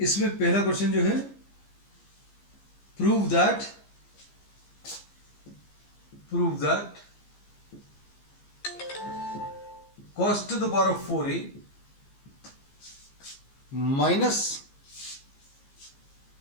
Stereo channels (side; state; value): right; late; 15 ms